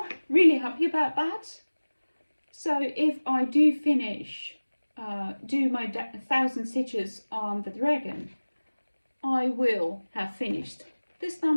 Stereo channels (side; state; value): both; inverted; correlation -1.00